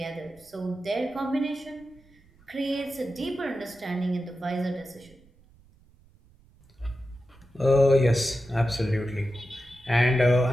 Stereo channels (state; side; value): noise; right; rumble, 29 dB below the sound